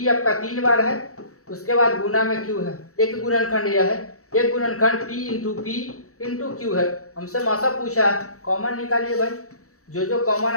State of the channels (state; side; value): late; right; 0.65 ms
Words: आपका 3 बार है, उसके बाद गुना में क्यू है। एक गुणनखंड यह है, एक गुणनखंड पी इंटू क्यू है। हमसे मौसा पूछा है, कॉमन निकालिए भाई, जो कॉमन